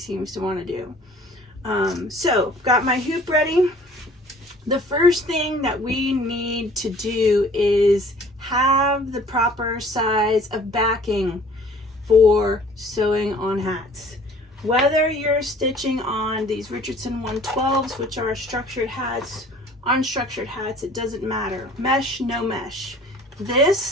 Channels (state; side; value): normal; both; correlation 0.52